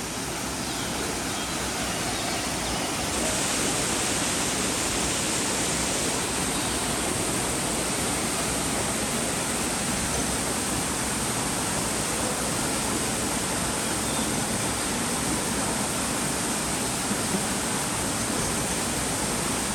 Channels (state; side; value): identical; both; correlation 1.00